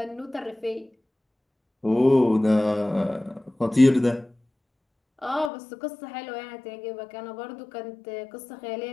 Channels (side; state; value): right; drops out; at 5.5 s